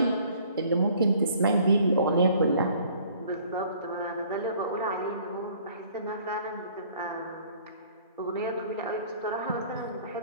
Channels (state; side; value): inverted; both; correlation -0.56